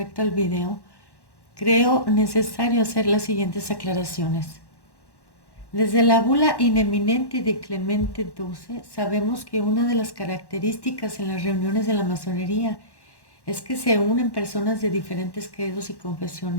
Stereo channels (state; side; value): late; right; 1.1 ms